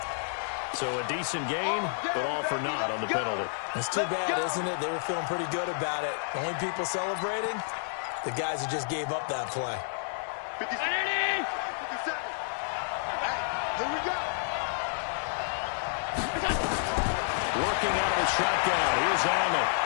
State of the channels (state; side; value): silent; right; digital silence